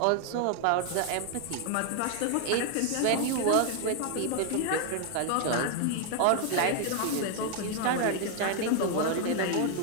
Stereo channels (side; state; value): both; different; correlation 0.00